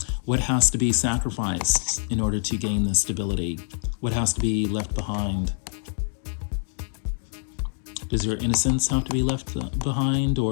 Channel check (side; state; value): right; silent; 55 dB below the other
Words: What has to be sacrificed in order to gain this stability? What has to be left behind? Does your innocence have to be left behind,